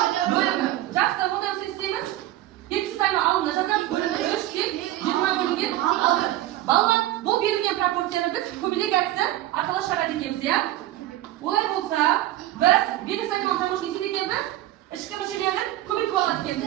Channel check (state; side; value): quieter; left; 14.9 dB